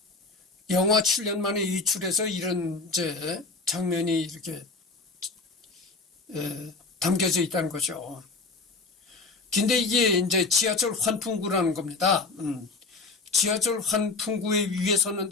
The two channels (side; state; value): right; quieter; 3.9 dB